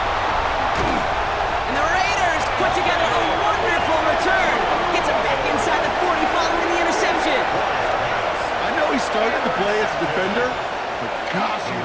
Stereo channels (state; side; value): identical; both; correlation 1.00